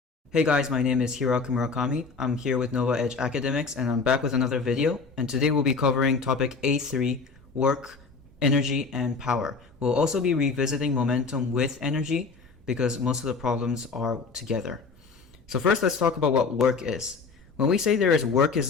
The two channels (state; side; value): quieter; right; 4.6 dB